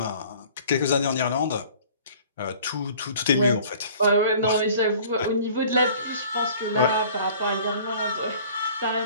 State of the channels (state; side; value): inverted; both; correlation -0.50